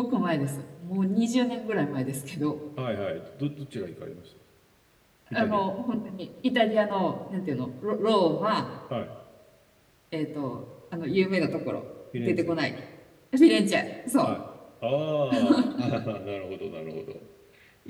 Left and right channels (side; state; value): both; identical; correlation 1.00